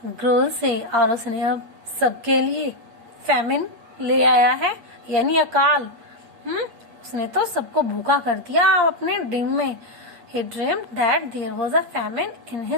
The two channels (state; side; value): late; left; 8.5 ms